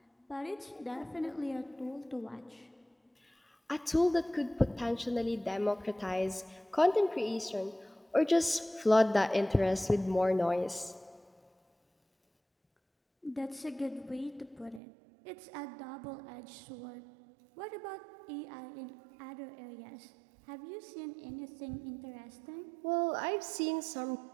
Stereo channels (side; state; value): left; drops out; at 14.8 s